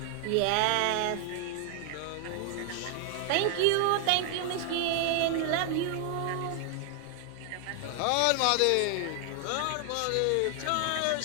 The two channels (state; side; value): different; both; correlation 0.00